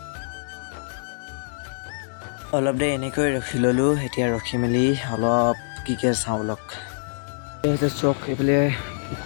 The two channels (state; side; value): silent; right; digital silence